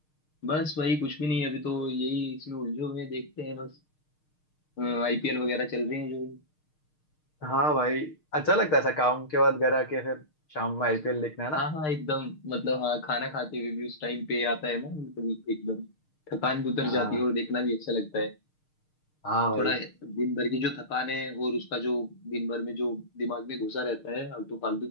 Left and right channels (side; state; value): right; late; 6.5 ms